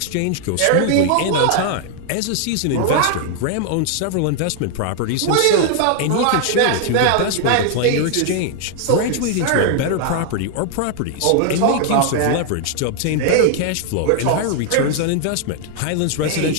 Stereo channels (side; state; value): both; different; correlation 0.00